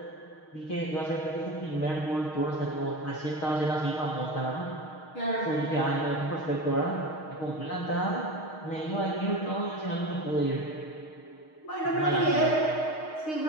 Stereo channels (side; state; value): right; late; 6.4 ms